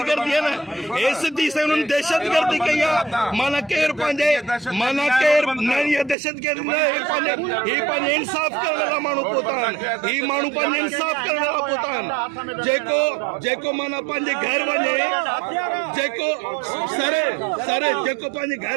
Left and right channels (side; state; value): left; drops out; at 6.2 s